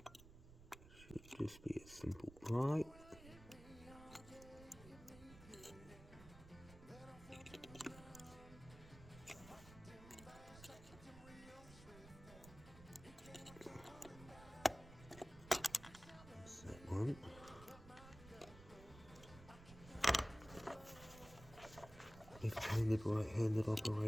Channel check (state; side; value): noise; right; rumble, 17 dB below the sound